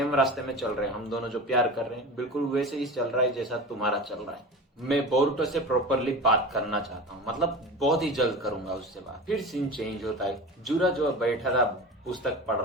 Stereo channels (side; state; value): both; normal; correlation 0.31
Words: रास्ते में चल रहे हैं, हम दोनों जो प्यार कर रहे हैं बिल्कुल वैसे ही चल रहा है जैसा तुम्हारा चल रहा है। मैं बोरुटो से प्रॉपरली बात करना चाहता हूँ, मतलब बहुत ही जल्द करूंगा उससे बात। फिर सीन चेंज होता है, जूरा जो बैठा था पुस्तक पढ़